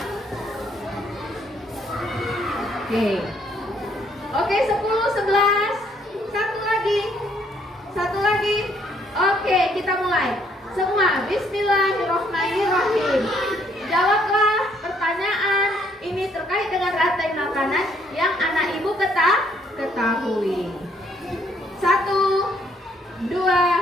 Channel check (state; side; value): normal; both; correlation 0.67